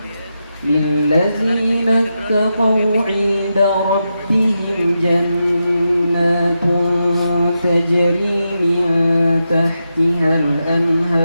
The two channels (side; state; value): both; inverted; correlation -0.87